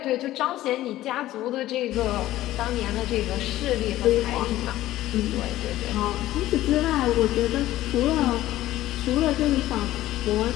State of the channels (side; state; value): right; quieter; 15.0 dB